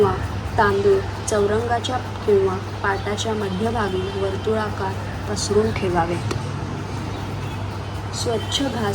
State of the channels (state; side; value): identical; both; correlation 1.00